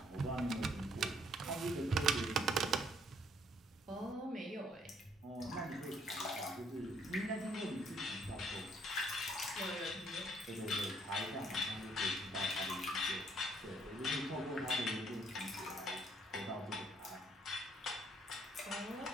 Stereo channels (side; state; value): both; normal; correlation 0.66